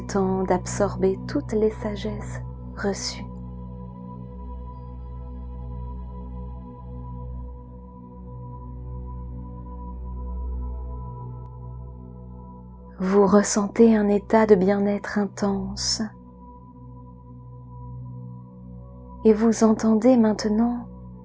d'absorber toutes les sagesses reçues. Vous ressentez un état de bien-être intense et vous entendez maintenant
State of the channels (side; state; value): both; identical; correlation 1.00